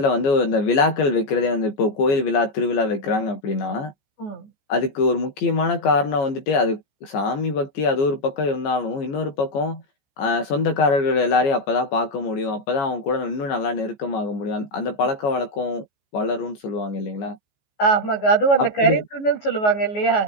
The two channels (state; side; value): late; right; 15 ms